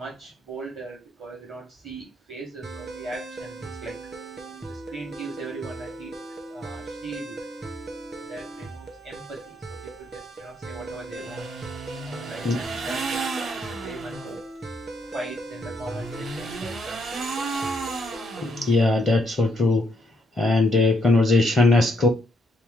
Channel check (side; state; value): both; normal; correlation 0.74